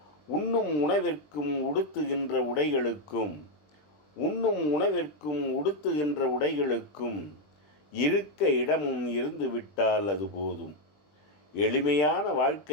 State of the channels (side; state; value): right; late; 20 ms